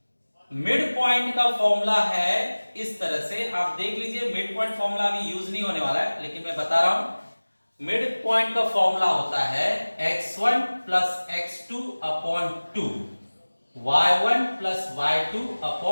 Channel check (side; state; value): both; inverted; correlation -1.00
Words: मिड पॉइंट का फॉर्मूला है इस तरह से, आप देख लीजिए, मिड पॉइंट फॉर्मूला अभी यूज नहीं होने वाला है, लेकिन मैं बता रहा हूं। मिड पॉइंट का फॉर्मूला होता है x1 + x2 upon 2, y1 + y2